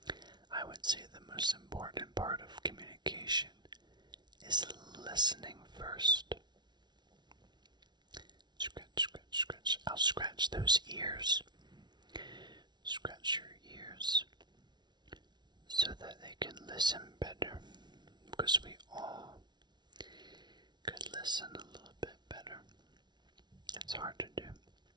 I would say the most important part of communication is listening first. Scratch, scratch, scratch. I'll scratch those ears. Scratch your ears so that they can listen better, because we all could listen a little bit better. It's hard to do.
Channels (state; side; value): late; left; 0.20 ms